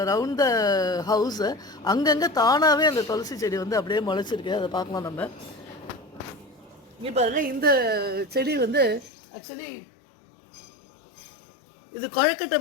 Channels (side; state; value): right; drops out; at 9.1 s